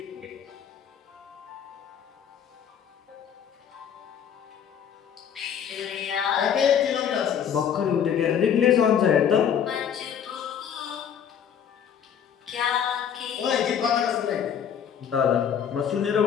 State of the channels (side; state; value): right; quieter; 8.3 dB